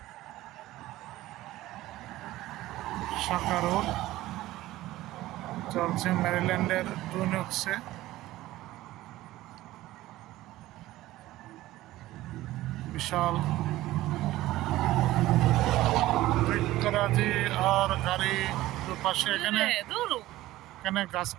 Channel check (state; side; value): quieter; left; 16.3 dB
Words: শাখা রোড চলছে ম্যারিল্যান্ডের টুইন ওকসে। বিশাল বৃক্ষরাজি আর গাড়ি দুপাশে। এখানে গাছ